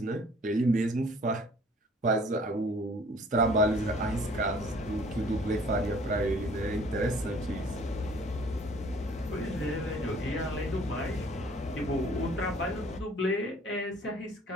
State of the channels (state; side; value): normal; both; correlation 0.54